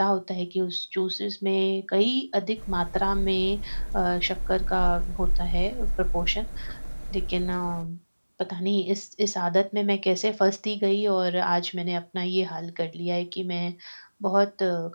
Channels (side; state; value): both; inverted; correlation -1.00